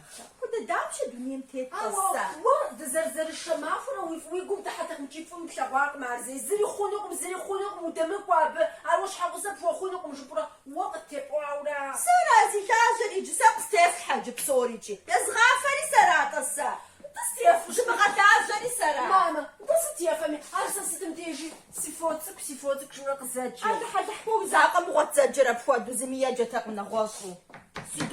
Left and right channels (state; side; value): identical; both; correlation 1.00